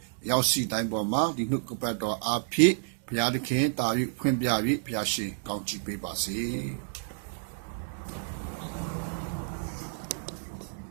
ရောက်စီတိုင်းပေါ်မှာဒီနှုတ်ကပတ်တော်အားဖြင့်ဘုရားသခင်တာ၍ဖွင့်ပြ၍ဘုရားရှင်ကောင်းချီးပေးပါစေ။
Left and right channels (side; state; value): left; silent; digital silence